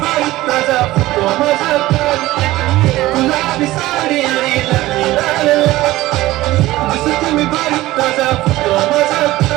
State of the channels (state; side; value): quieter; left; 17.2 dB